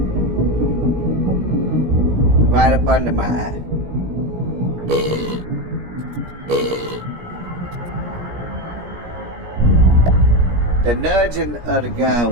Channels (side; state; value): left; late; 17 ms